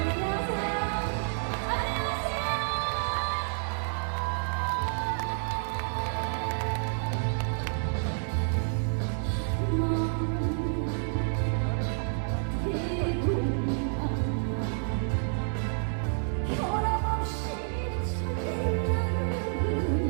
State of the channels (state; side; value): silent; left; digital silence